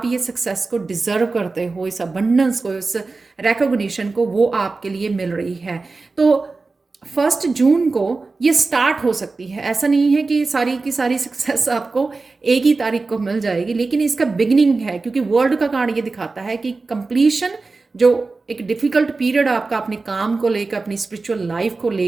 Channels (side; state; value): left; quieter; 3.8 dB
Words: ये सक्सेस को डिज़र्व करते हो, इस अबंडेंस को, इस रिकॉग्निशन को, वो आपके लिए मिल रही है। तो 1 जून को ये स्टार्ट हो सकती है, ऐसा नहीं है कि सारी की सारी सक्सेस आपको एक ही तारीख को मिल जाएगी, लेकिन इसका बिगिनिंग है, क्योंकि वर्ल्ड का कार्ड ये दिखाता है कि कंप्लीशन, जो एक डिफिकल्ट पीरियड आपका अपने काम को लेकर, अपनी स्पिरिचुअल लाइफ को